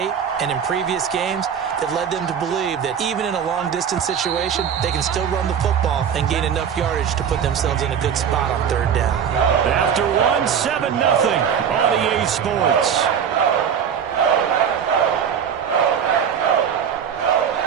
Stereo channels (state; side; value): quieter; left; 7.9 dB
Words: and in previous games that led them to believe that even in a long-distance situation, they can still run the football and gain enough yardage to put themselves in a good spot on 3rd down. After 1, 7-0 on EA Sports.